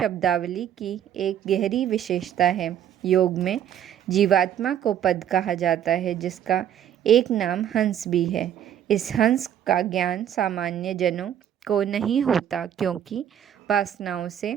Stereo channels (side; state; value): left; quieter; 10.0 dB